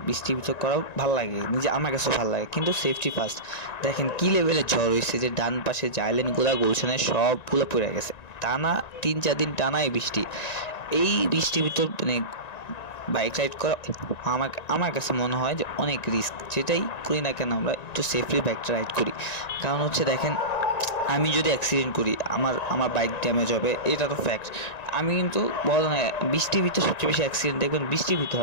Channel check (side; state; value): right; late; 1.9 ms